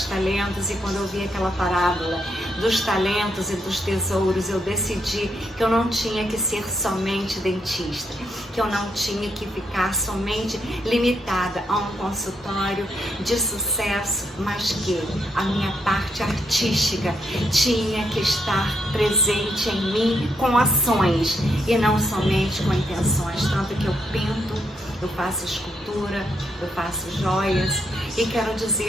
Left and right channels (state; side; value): normal; both; correlation 0.78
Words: talentos e quando eu vi aquela parábola dos talentos e dos tesouros, eu decidi que eu não tinha que ser somente dentista, que eu não tinha que ficar somente limitada a um consultório de sucesso, mas que a minha parte artística tinha que estar presente em mim com ações e não somente com intenções. Tanto que eu pinto, eu faço escultura, eu faço joias e quero